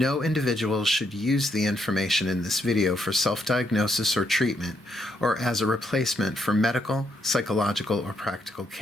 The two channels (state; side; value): normal; both; correlation 0.76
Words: individual should use the information in this video for self-diagnosis or treatment, or as a replacement for medical, psychological, or practical